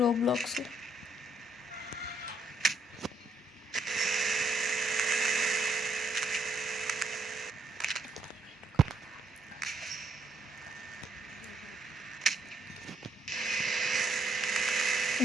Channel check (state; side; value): normal; both; correlation 0.73